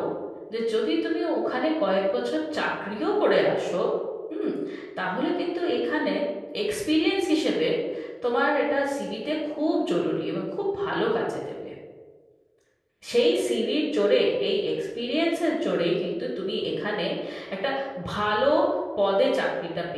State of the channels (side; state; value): both; identical; correlation 1.00